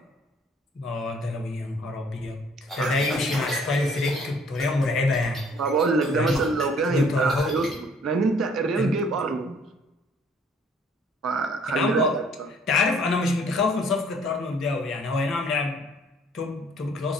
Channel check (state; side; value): normal; both; correlation 0.59